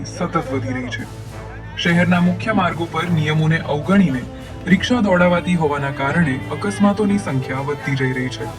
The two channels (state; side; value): identical; both; correlation 1.00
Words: સતત વધી રહી છે. શહેરના મુખ્ય માર્ગો પર નિયમોને અવગણીને રિક્ષા દોડાવાતી હોવાના કારણે અકસ્માતોની સંખ્યા વધતી જઈ રહી છે.